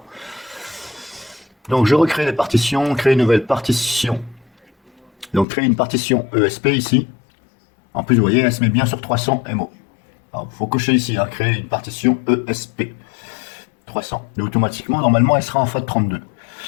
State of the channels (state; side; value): drops out; right; at 5.5 s